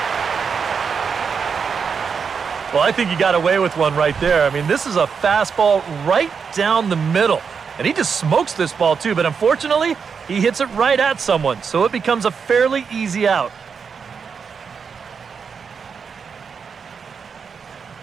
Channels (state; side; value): quieter; left; 6.1 dB